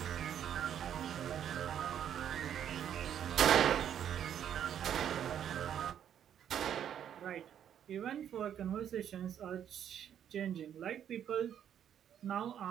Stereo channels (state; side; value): quieter; left; 9.5 dB